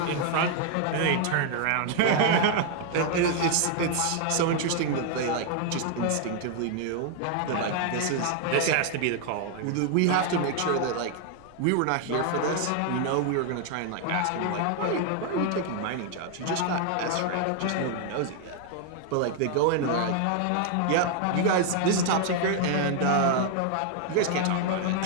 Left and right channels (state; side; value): different; both; correlation 0.00